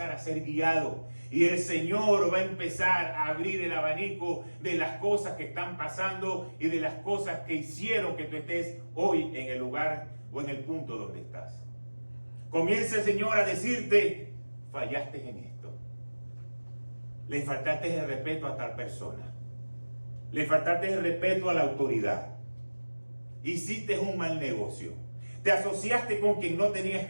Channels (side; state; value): both; inverted; correlation -1.00